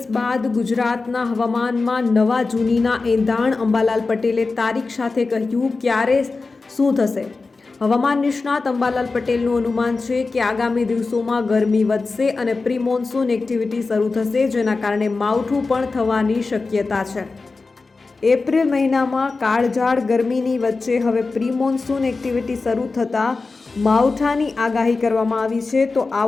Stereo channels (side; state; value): right; quieter; 3.9 dB